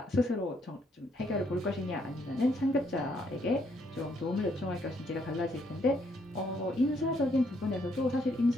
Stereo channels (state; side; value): normal; both; correlation 0.71